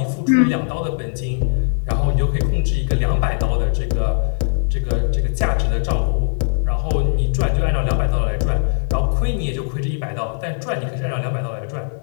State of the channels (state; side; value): silent; right; digital silence